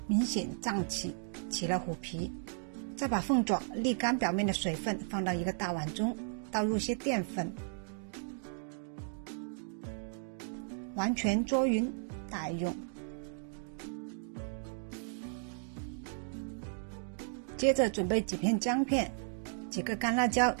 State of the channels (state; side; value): silent; left; digital silence